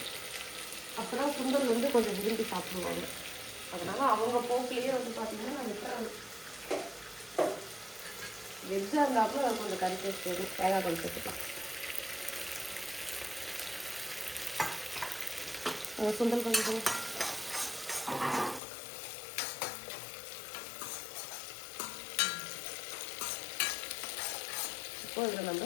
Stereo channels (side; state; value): right; drops out; at 18.6 s